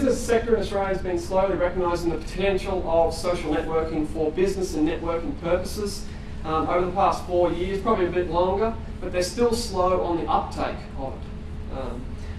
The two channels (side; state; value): both; identical; correlation 1.00